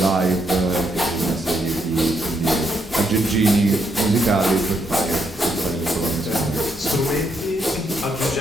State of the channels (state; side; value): normal; both; correlation 0.77